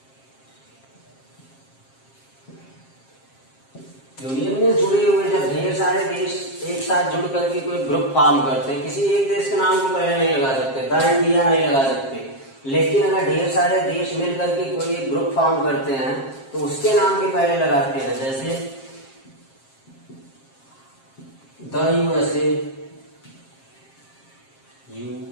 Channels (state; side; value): late; right; 7.5 ms